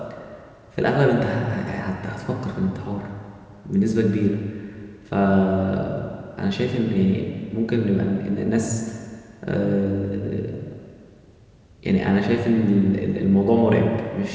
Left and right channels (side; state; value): both; identical; correlation 1.00